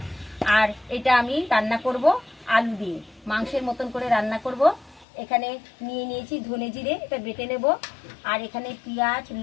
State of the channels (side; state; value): right; drops out; at 5.1 s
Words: আর এটা আমি রান্না করব আলু দিয়ে, মাংসের মতন করে রান্না করব। এখানে নিয়ে নিয়েছি ধনে জিরে, এটা বেটে নেব। আর এখানে পেঁয়াজ,